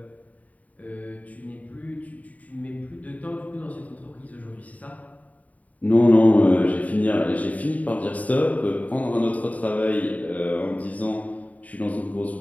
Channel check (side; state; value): right; late; 0.071 ms